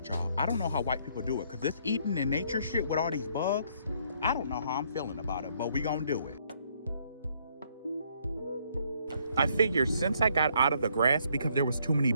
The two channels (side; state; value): both; inverted; correlation -0.68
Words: y'all. I don't know how white people do it, cause this eating in nature shit with all these bugs, I don't know how I'm feeling about it, but we gonna do it. I figured since I got out of the grass because there was too many